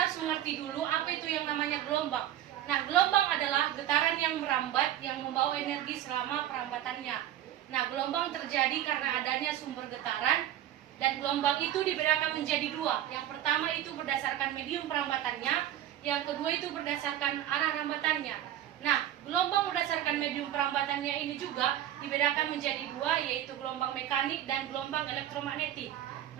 harus mengerti dulu apa itu yang namanya gelombang. Nah, gelombang adalah getaran yang merambat yang membawa energi selama perambatannya. Nah, gelombang terjadi karena adanya sumber getaran, dan gelombang itu dibedakan menjadi dua. Yang pertama itu berdasarkan medium perambatannya, yang kedua itu berdasarkan arah rambatannya. Nah, gelombang berdasarkan medium perambatannya ini juga dibedakan menjadi dua, yaitu gelombang mekanik dan gelombang elektromagnetik.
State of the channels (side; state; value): left; quieter; 12.0 dB